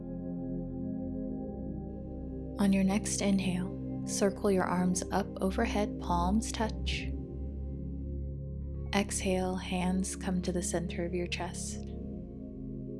On your next inhale, circle your arms up overhead, palms touch. Exhale, hands come to the center of your chest.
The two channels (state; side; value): identical; both; correlation 1.00